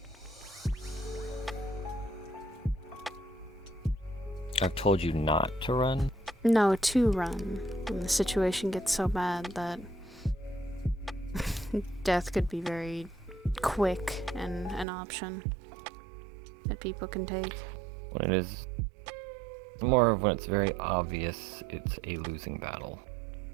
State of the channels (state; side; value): drops out; left; at 14.9 s